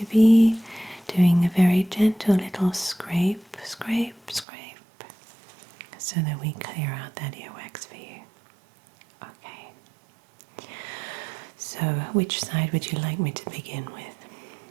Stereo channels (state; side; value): drops out; left; at 4.5 s